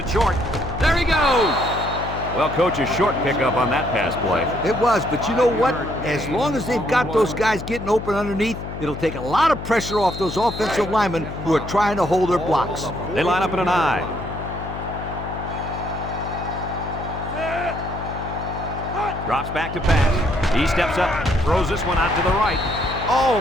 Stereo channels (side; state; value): left; noise; hum, 9 dB below the sound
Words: short. There he goes! Well, Coach, a short pickup on that pass play. It was, but you know what? As long as they've got those guys getting open underneath, it'll take a lot of pressure off those offensive linemen who are trying to hold their blocks. They line up in an I. Drops back to pass. He steps up, throws this one out to the right.